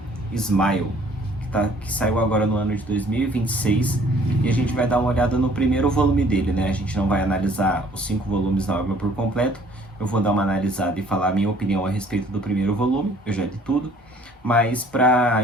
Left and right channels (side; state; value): both; normal; correlation 0.57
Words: Smile, que saiu agora no ano de 2026, e a gente vai dar uma olhada no primeiro volume dele, né? A gente não vai analisar os 5 volumes da obra por completo, eu vou dar uma analisada e falar a minha opinião a respeito do primeiro volume, eu já li tudo, mas para